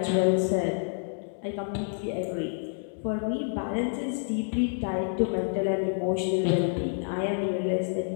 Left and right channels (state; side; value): silent; right; digital silence